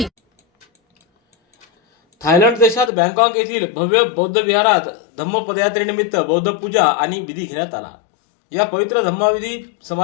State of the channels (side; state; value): right; drops out; at 2.9 s